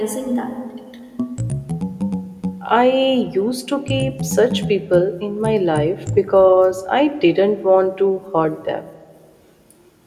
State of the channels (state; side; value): identical; both; correlation 1.00